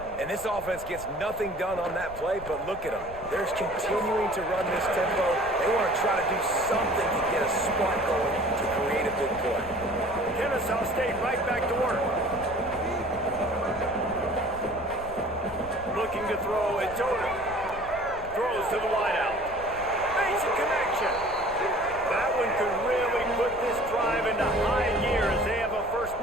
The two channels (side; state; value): left; noise; rumble, 16 dB below the sound